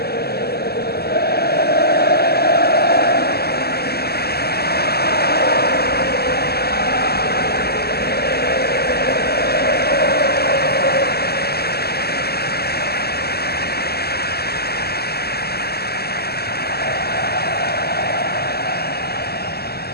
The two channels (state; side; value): late; right; 0.46 ms